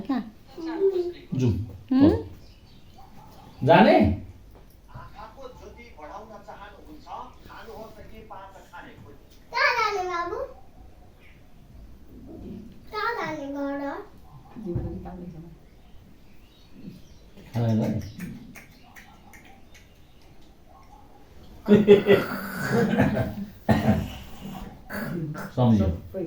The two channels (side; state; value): both; identical; correlation 1.00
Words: कहाँ जाउँ जाने सम्झ्यो